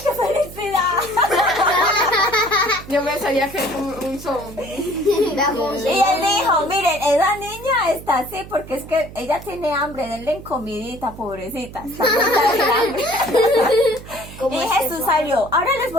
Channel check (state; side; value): noise; right; hum, 15 dB below the sound